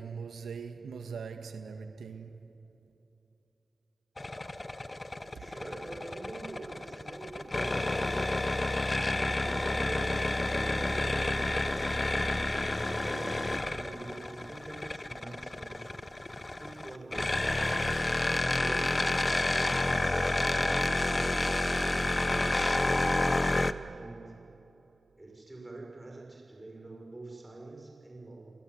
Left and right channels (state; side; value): normal; both; correlation 0.98